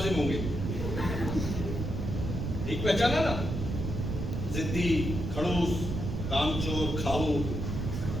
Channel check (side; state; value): right; noise; rumble, 3 dB below the sound